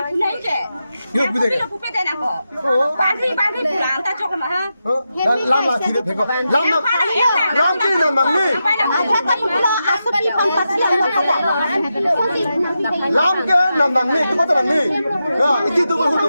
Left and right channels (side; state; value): both; inverted; correlation -0.88